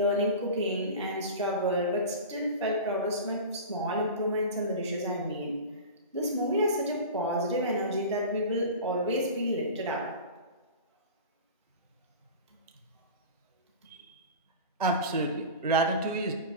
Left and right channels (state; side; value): inverted; both; correlation -0.32